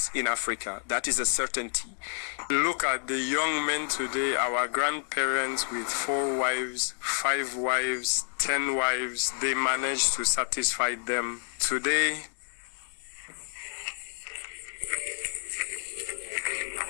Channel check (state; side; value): silent; right; 58 dB below the other